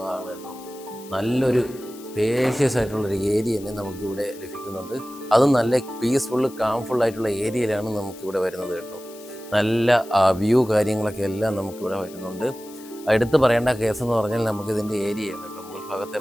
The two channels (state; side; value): noise; left; hiss, 20 dB below the sound